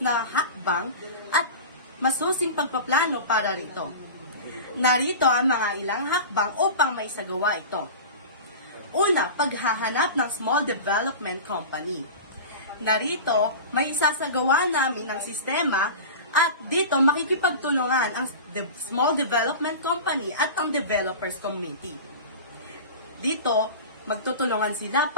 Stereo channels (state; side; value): inverted; both; correlation -0.32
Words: na hakbang at masusing pagpaplano para rito. Narito ang mga ilang hakbang upang may sagawa ito. Una, paghahanap ng small development company. Narito, may isasagawa namin ng sistema at dito makikipagtulungan ang small development company at ang developers committee. Dito, magtutulungan sila